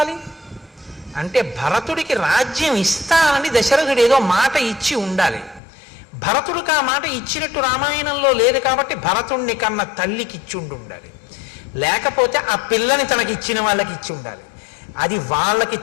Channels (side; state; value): right; drops out; at 5.6 s